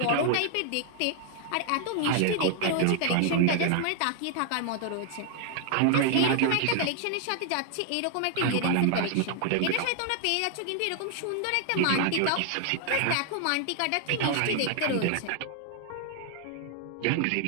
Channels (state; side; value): different; both; correlation 0.00